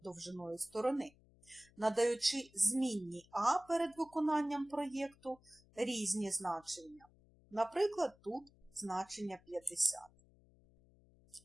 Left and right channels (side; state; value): left; noise; hum, 28 dB below the sound